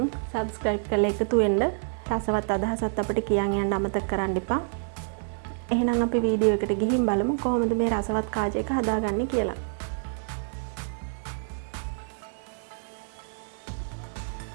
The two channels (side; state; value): left; silent; digital silence